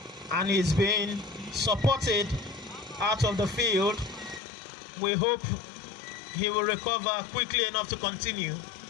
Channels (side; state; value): right; drops out; at 4.4 s